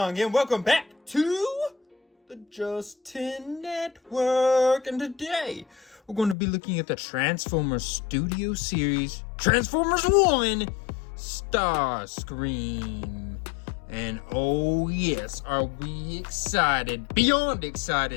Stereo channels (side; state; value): right; drops out; at 6.4 s